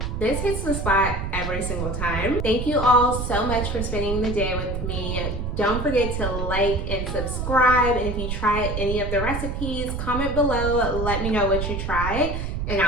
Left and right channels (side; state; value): right; noise; rumble, 3 dB below the sound